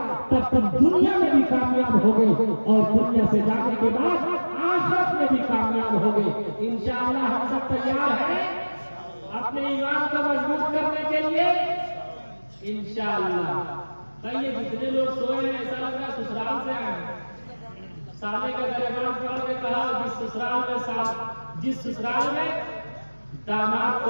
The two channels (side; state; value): both; inverted; correlation -1.00